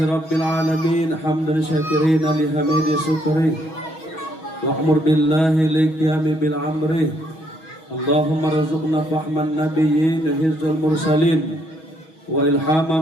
rabbil alamin, hamdan syakirina lihamidi syukri wa amur billahi liqiyami bil amri. Allahumma razuqna fahman nabiyyin hizul mursalin wa ilhama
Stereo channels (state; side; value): late; right; 6.3 ms